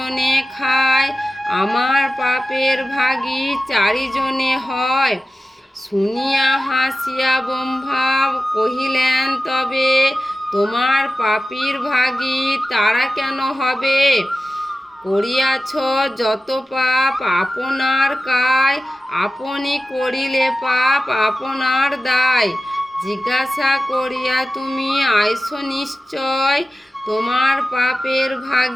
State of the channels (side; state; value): both; normal; correlation 0.94